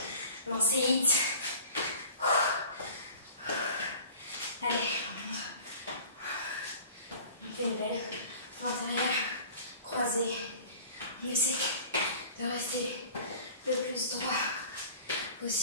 Lancer hit. Allez, on fait une belle pointe arrière, croisée. On essaie de rester le plus droit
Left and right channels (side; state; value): both; inverted; correlation -0.43